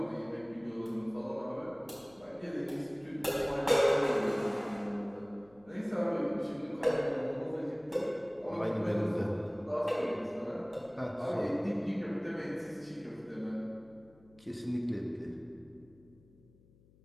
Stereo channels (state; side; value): noise; left; hum, 28 dB below the sound